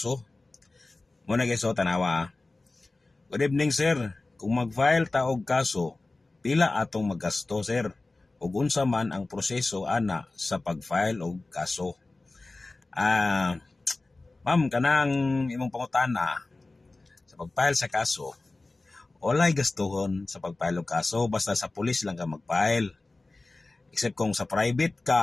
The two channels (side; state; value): right; quieter; 3.2 dB